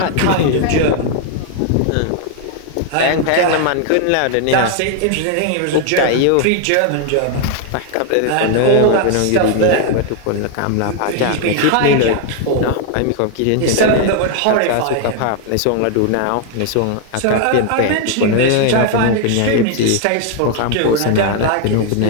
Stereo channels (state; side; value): different; both; correlation 0.00